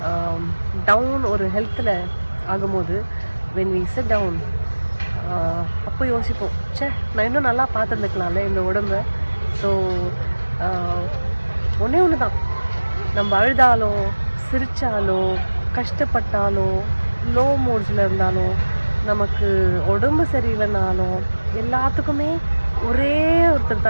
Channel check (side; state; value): both; inverted; correlation -1.00